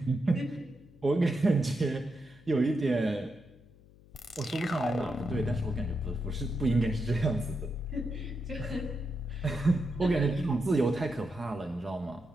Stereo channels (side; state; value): left; noise; hum, 25 dB below the sound